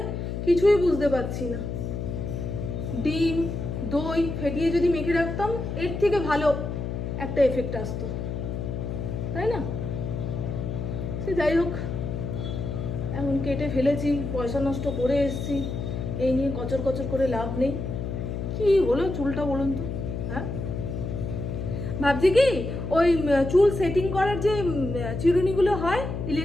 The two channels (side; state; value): left; noise; hum, 4 dB below the sound